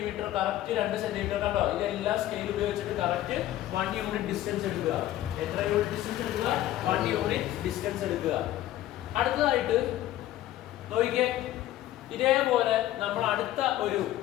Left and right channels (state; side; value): quieter; right; 13.8 dB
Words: കറക്റ്റ് 2 സെന്റിമീറ്റർ കണ്ടോ, ഇതെല്ലാം സ്കെയിൽ ഉപയോഗിച്ചിട്ട് കറക്റ്റ് 1 യൂണിറ്റ് ഡിസ്റ്റൻസ് എടുക്കുക. എത്ര യൂണിറ്റ് ഡിസ്റ്റൻസ് എടുക്കുക? 1 യൂണിറ്റ് ഡിസ്റ്റൻസ് എടുക്കുക. അടുത്തതായിട്ട് നോക്കിക്കേ, ഇതേപോലെ നമ്മൾ അടുത്ത